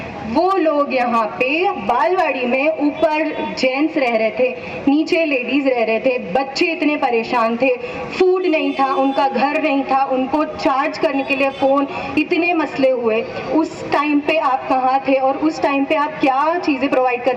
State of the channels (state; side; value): identical; both; correlation 1.00